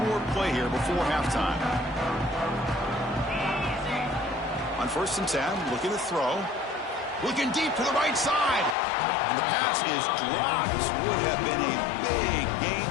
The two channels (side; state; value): right; drops out; at 8.8 s